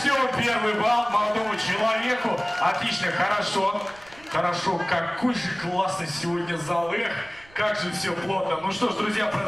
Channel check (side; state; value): right; noise; rumble, 25 dB below the sound